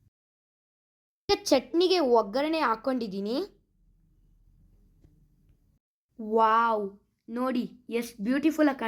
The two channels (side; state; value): both; identical; correlation 1.00